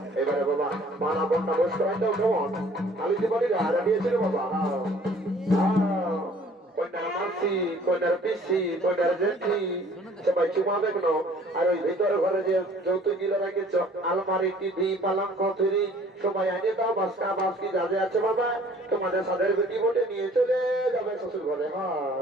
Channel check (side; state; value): both; normal; correlation 0.54